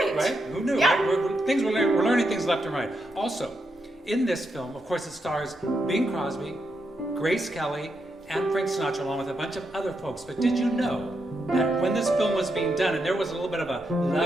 Right? Who knew? Yeah. Right? We're learning things left and right. Also, in this film, of course, it stars Bing Crosby, Grace Kelly, and Frank Sinatra, along with a bunch of other folks. But did you know that when this film was being done, and there was a little bit of a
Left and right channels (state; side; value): normal; both; correlation 0.83